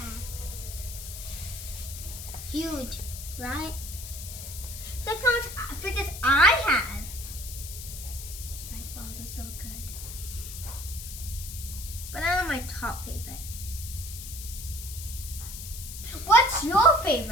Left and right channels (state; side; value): noise; left; hiss, 10 dB below the sound